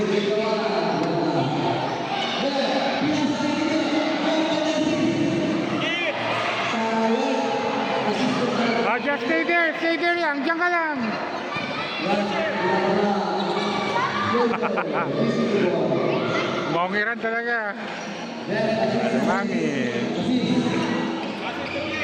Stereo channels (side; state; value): both; identical; correlation 1.00